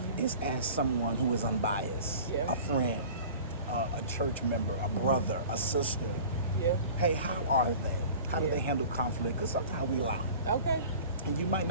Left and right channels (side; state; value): both; inverted; correlation -0.42